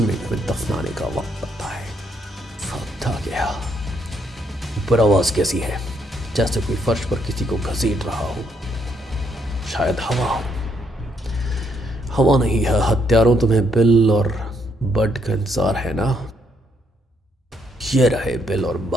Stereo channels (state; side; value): normal; both; correlation 0.73